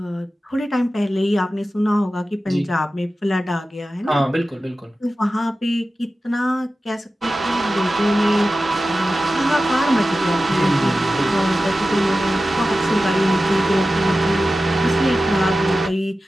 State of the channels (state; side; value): normal; both; correlation 0.94